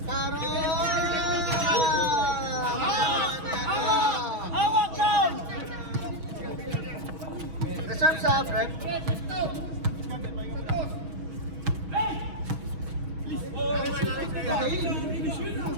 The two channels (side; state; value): left; late; 6.3 ms